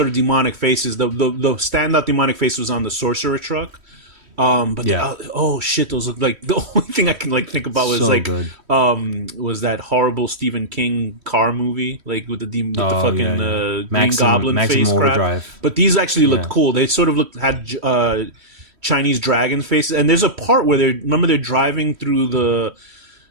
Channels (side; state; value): left; late; 3.1 ms